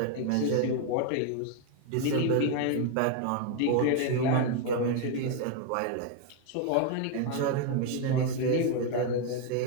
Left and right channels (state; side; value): different; both; correlation 0.01